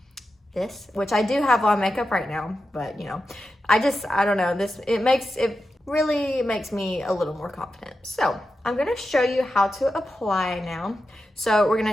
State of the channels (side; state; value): both; normal; correlation 0.90